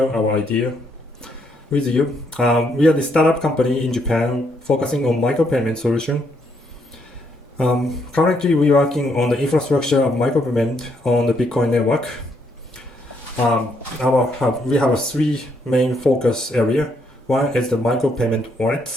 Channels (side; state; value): both; normal; correlation 0.74